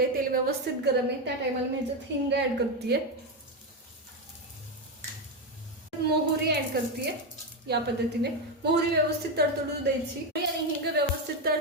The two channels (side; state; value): both; normal; correlation 0.10